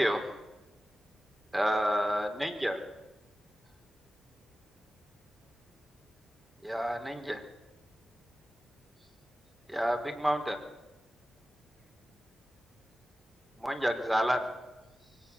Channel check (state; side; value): normal; both; correlation 0.95